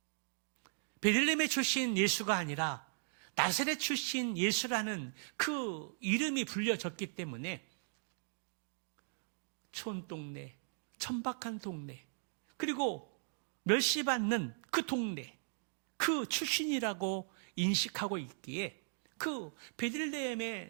베들레헴의 출신 예수가 아니라 나사렛 출신 예수라는 그 이름이 불려졌기 때문에 촌동네, 천박한 동네, 그리고 멸시받는 그 동네, 그 출신이라고 인식하고 있기에 그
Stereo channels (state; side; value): silent; left; digital silence